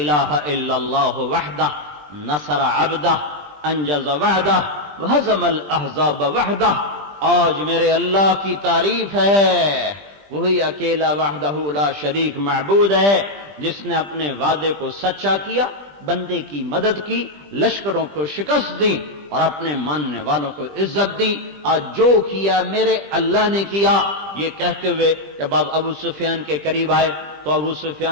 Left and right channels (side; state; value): left; late; 20 ms